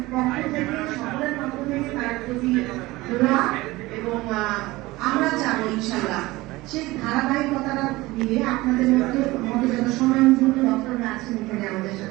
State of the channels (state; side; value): quieter; left; 19.9 dB